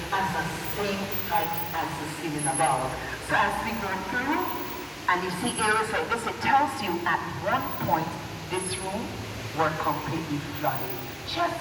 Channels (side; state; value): both; identical; correlation 1.00